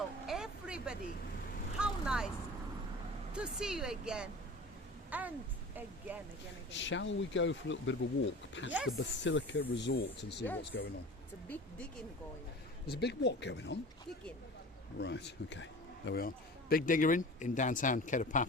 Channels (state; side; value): normal; both; correlation 0.38